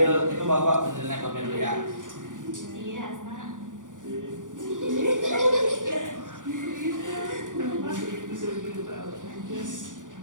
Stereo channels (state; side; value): late; left; 0.88 ms